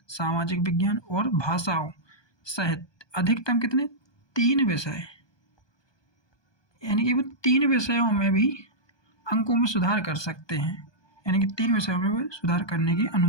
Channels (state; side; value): late; right; 1.2 ms